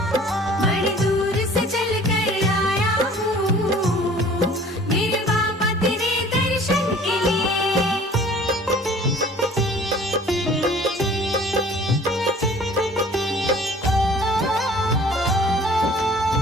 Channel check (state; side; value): normal; both; correlation 0.49